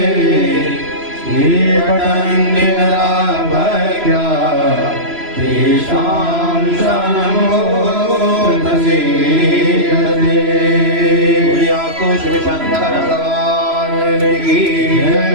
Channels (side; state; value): left; late; 3.0 ms